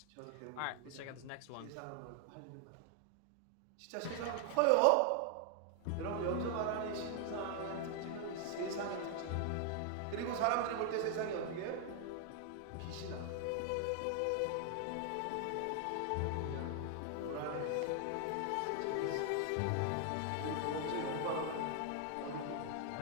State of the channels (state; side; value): different; both; correlation 0.00